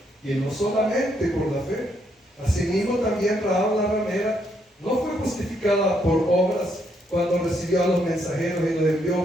y no solamente por la fe. Asimismo también Rahab la ramera no fue justificada por obras cuando recibió a los mensajeros y los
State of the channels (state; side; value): normal; both; correlation 0.74